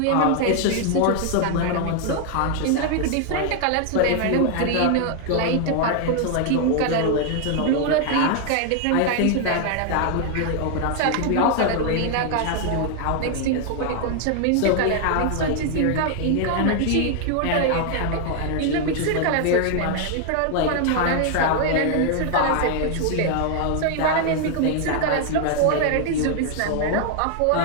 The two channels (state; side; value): different; both; correlation 0.00